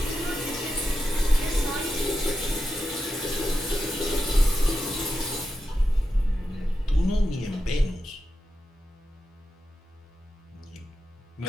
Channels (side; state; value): both; normal; correlation 0.89